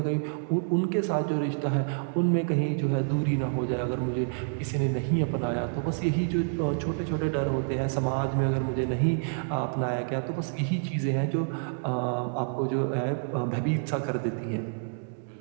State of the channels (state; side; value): silent; left; digital silence